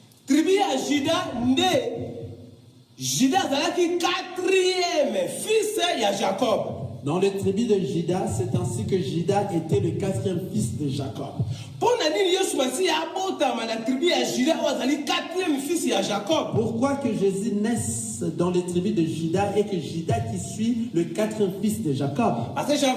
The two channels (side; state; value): both; identical; correlation 1.00